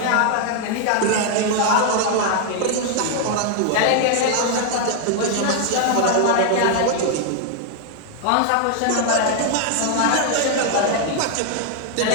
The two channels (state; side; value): different; both; correlation 0.00